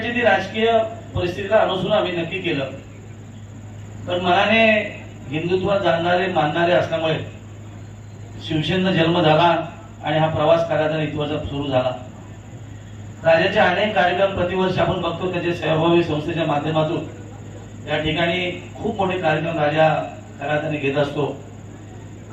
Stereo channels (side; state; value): both; identical; correlation 1.00